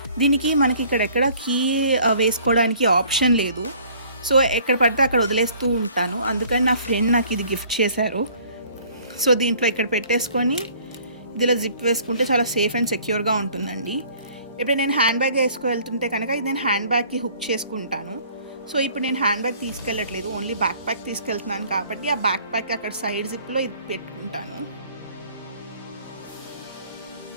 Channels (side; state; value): both; inverted; correlation -0.55